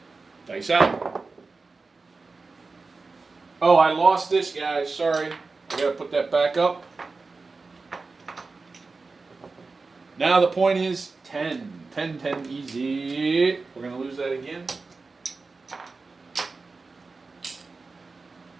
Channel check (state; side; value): quieter; left; 4.0 dB